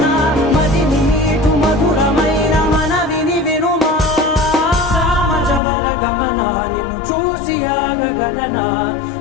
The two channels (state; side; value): drops out; right; at 5.6 s